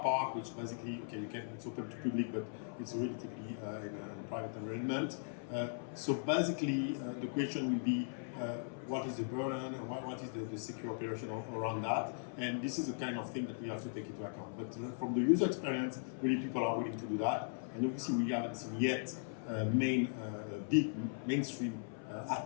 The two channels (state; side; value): silent; right; 52 dB below the other